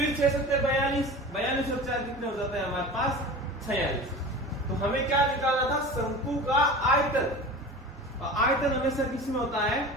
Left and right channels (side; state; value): both; normal; correlation 0.35